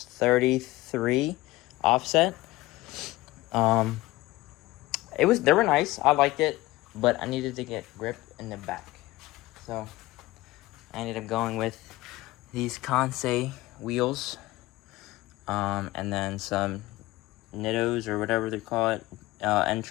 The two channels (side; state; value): right; quieter; 19.0 dB